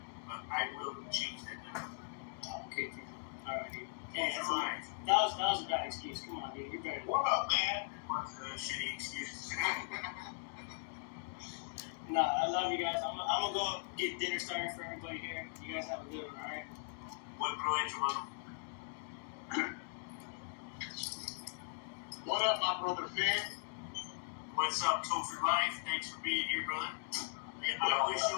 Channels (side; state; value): right; silent; digital silence